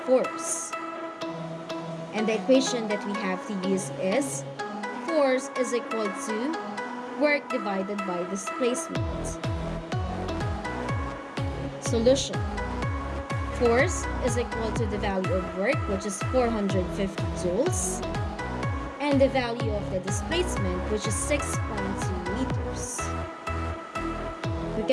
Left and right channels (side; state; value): both; identical; correlation 1.00